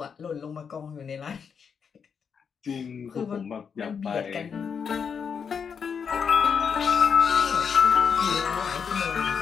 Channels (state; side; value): quieter; right; 6.6 dB